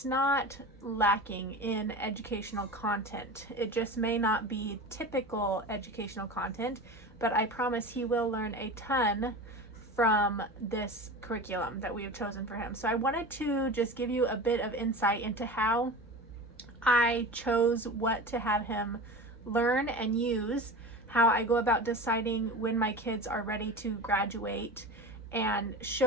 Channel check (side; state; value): both; normal; correlation 0.31